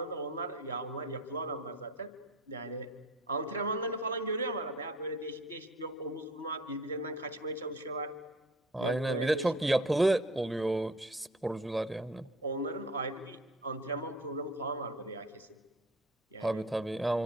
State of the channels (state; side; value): normal; both; correlation 0.46